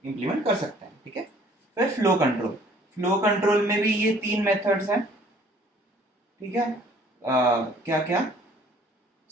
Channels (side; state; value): both; normal; correlation 0.56